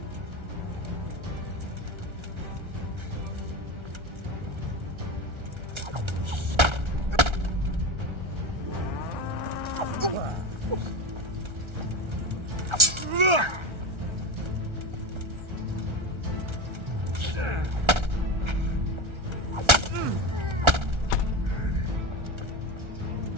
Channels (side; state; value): left; late; 1.3 ms